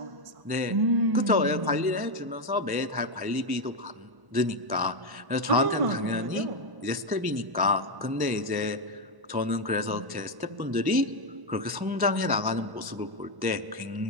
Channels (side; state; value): left; late; 1.1 ms